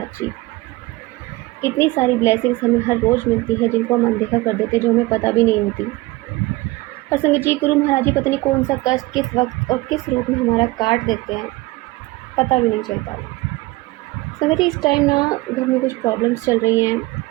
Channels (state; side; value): quieter; left; 20.7 dB